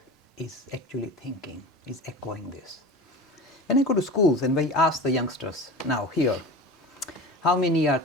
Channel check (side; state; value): both; normal; correlation 0.33